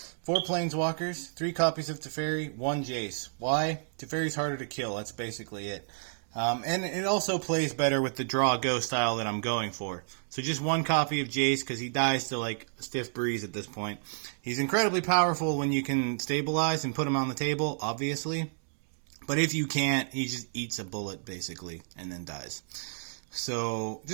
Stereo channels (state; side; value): silent; left; digital silence